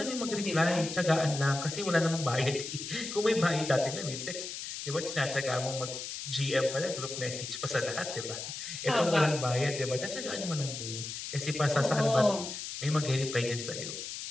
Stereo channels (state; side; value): noise; left; hiss, 7 dB below the sound